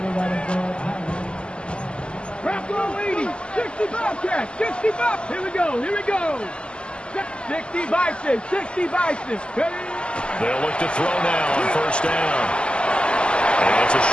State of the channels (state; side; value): late; right; 0.051 ms